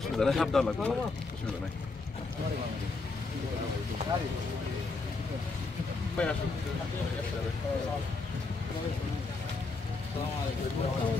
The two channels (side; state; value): right; quieter; 3.9 dB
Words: নেই সাবধান লাগবে অসুবিধা নেই